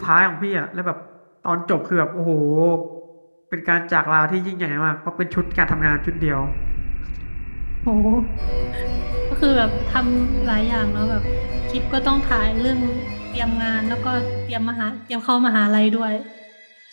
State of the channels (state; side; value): inverted; both; correlation -1.00